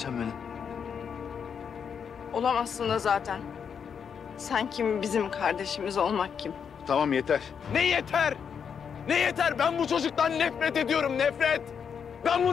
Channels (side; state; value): right; quieter; 7.1 dB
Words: benim. Olamazsın da zaten. Sen kim, bizim kardeşimiz olmak kim? Tamam yeter. Ne yeter? Ne yeter? Ben bu çocuktan nefret ediyorum, nefret. Ben